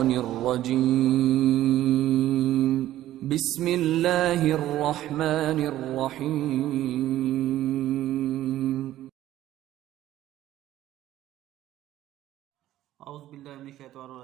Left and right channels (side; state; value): left; quieter; 13.8 dB